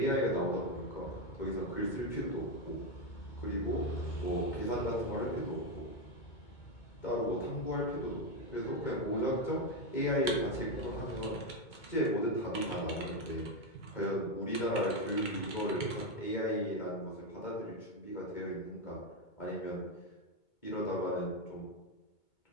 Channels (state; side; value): late; right; 2.2 ms